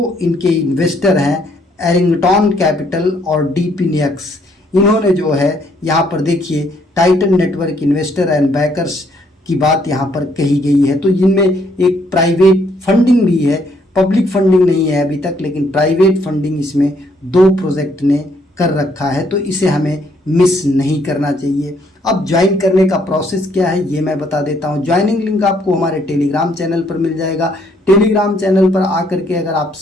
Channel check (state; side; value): normal; both; correlation 0.69